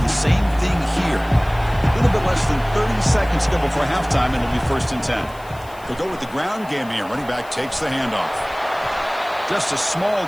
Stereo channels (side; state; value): left; noise; hiss, 24 dB below the sound